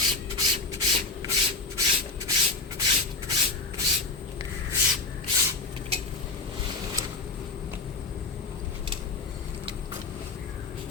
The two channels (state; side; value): quieter; right; 3.8 dB